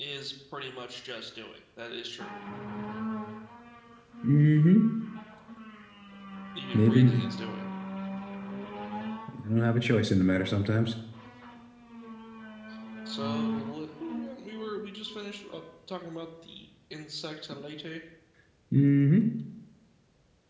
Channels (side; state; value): both; identical; correlation 1.00